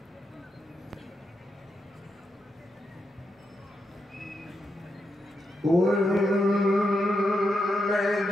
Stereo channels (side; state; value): both; normal; correlation 0.84